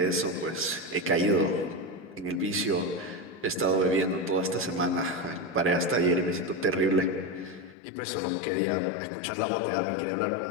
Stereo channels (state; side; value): drops out; right; at 7.8 s